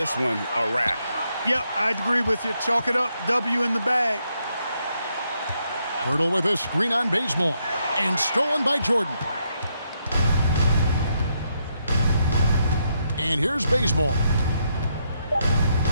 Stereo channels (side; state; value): both; inverted; correlation -0.78